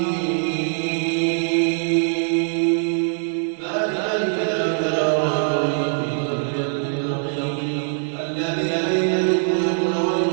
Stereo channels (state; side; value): silent; left; digital silence